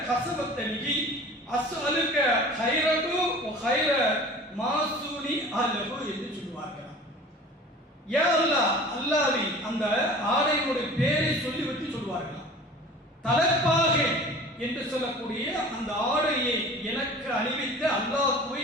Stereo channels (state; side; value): normal; both; correlation 0.42